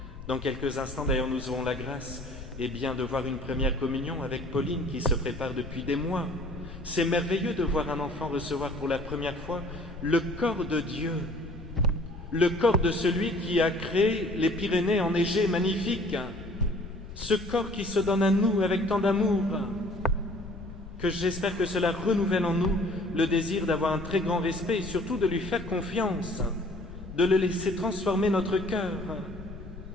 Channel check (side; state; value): left; noise; rumble, 13 dB below the sound